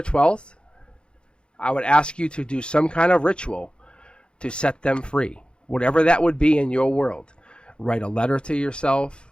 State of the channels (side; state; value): right; late; 0.053 ms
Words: 12th, I would ask you to do some kind of ritual to set them free. whatever that would be in your world. Write a letter to yourself,